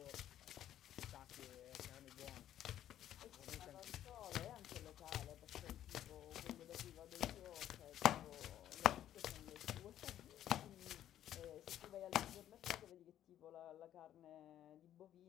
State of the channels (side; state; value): right; quieter; 11.6 dB